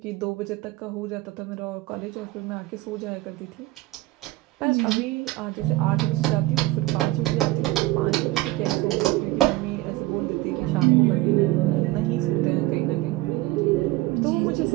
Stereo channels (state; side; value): quieter; left; 18.8 dB